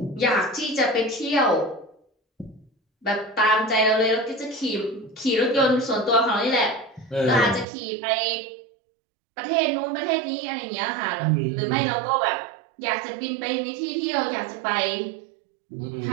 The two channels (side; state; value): left; drops out; at 7.7 s